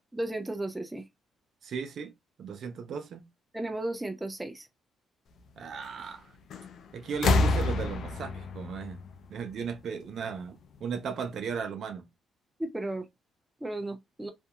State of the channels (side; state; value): both; normal; correlation 0.77